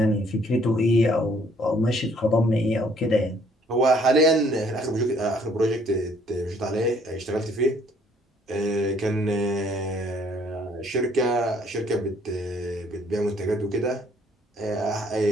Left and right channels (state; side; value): normal; both; correlation 0.62